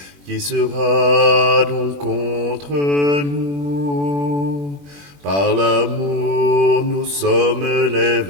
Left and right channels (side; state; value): left; late; 21 ms